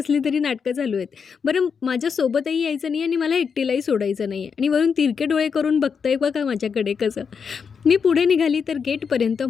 तरी नाटकं चालू आहेत. बरं, माझ्यासोबतही यायचं नाही आणि मला एकटीलाही सोडायचं नाही आहे, आणि वरून तिरके डोळे करून बघतंय बघा माझ्याकडे कसं. मी पुढे निघाली तर गेटपर्यंत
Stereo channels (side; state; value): right; quieter; 6.2 dB